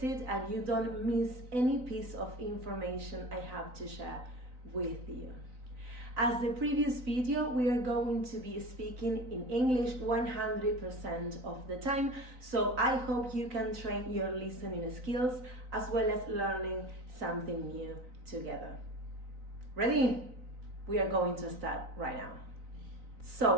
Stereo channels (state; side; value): late; left; 3.9 ms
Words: and you don't miss any piece of information I have to share with you. As the previous video, we are going to be speaking in English 100% of the time, so I hope you can train your listening skills as well as learning something new together. Ready? We are going to start right now.